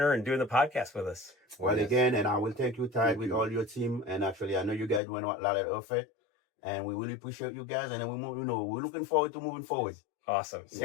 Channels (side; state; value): right; drops out; at 5.0 s